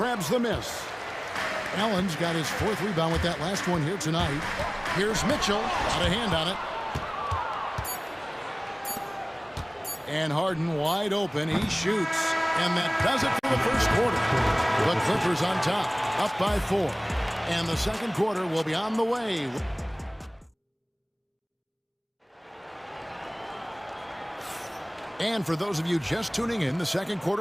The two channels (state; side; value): identical; both; correlation 1.00